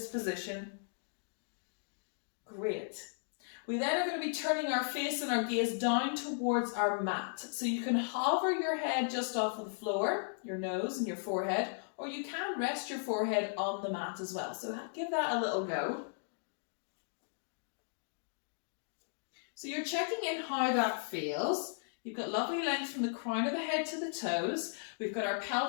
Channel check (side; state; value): right; silent; digital silence